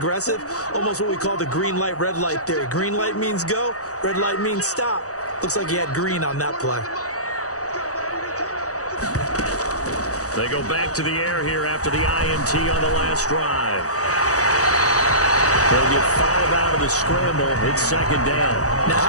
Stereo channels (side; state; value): right; late; 0.66 ms